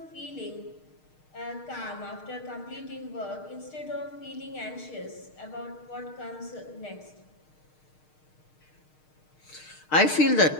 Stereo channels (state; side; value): late; right; 6.5 ms